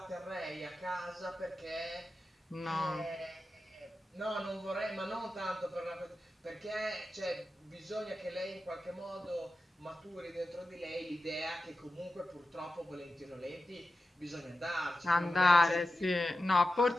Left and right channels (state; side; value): normal; both; correlation 0.92